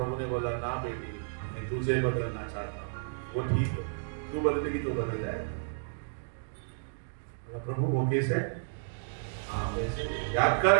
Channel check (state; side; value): silent; left; digital silence